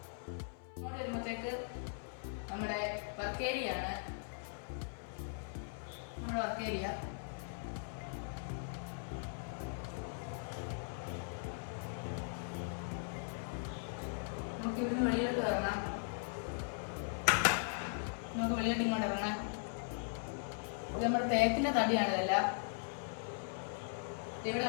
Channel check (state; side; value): silent; right; 52 dB below the other